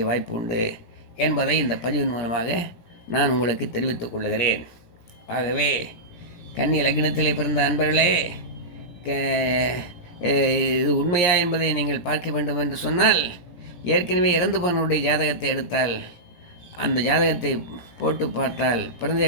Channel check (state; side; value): late; right; 17 ms